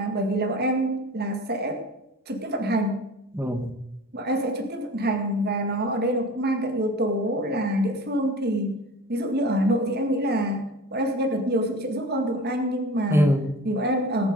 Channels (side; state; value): both; normal; correlation 0.38